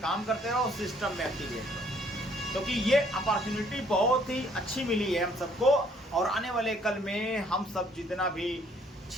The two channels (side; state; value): both; normal; correlation 0.63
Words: करते रहो, सिस्टम में एक्टिवेट रहो। क्योंकि ये अपॉर्चुनिटी बहुत ही अच्छी मिली है हम सबको, और आने वाले कल में हम सब जितना भी